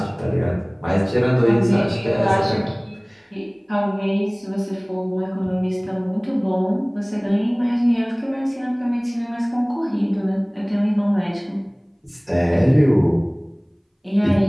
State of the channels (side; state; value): both; identical; correlation 1.00